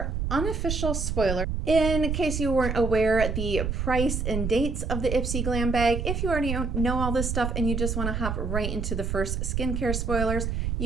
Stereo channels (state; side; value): noise; right; rumble, 1 dB below the sound